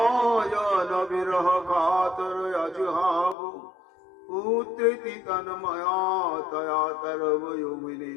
বিরহ কাতর অজুহাব। পুত্রেতি তন্ময়া তয়া তরবয়োমিনী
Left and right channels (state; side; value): drops out; right; at 3.4 s